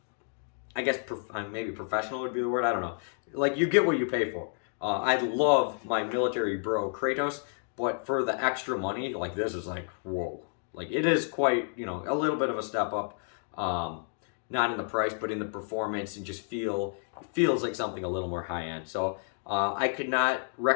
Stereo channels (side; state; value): right; silent; 58 dB below the other